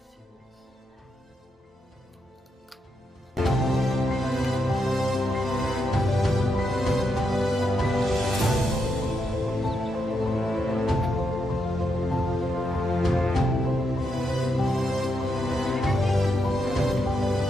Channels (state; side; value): normal; both; correlation 0.81